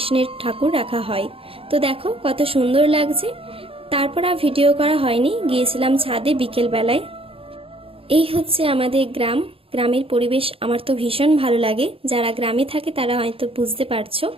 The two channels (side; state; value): left; late; 0.27 ms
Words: ঠাকুর রাখা হয়। তো দেখো কত সুন্দর লাগছে। তারপর আর ভিডিও করা হয়নি, গিয়েছিলাম ছাদে বিকেল বেলায়। এই হচ্ছে আমাদের গ্রাম। গ্রামের পরিবেশ আমার তো ভীষণ ভালো লাগে। যারা গ্রামে থাকে তারা হয়তো বুঝতে পারছো।